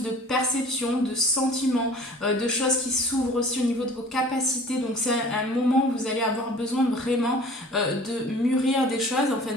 de perceptions, de sentiments, de choses qui s'ouvrent aussi au niveau de vos capacités, donc c'est un moment où vous allez avoir besoin vraiment de mûrir des choses, enfin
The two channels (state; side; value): normal; both; correlation 0.46